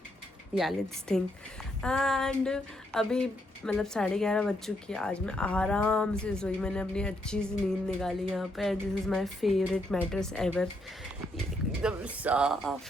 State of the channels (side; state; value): both; normal; correlation 0.76